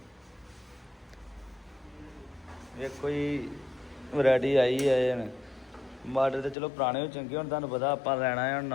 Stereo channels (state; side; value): drops out; right; at 6.6 s